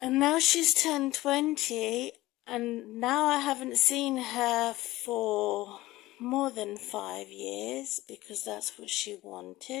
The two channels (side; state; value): right; quieter; 17.8 dB